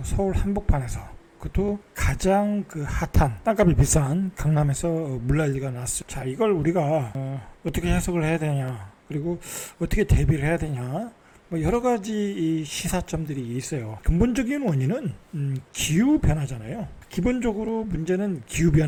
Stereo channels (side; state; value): both; identical; correlation 1.00